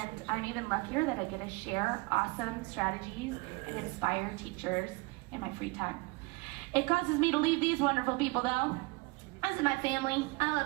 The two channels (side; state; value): left; quieter; 26.2 dB